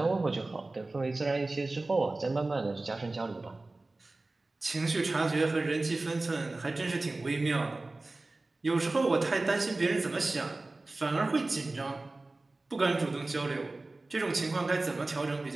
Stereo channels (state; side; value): quieter; left; 3.1 dB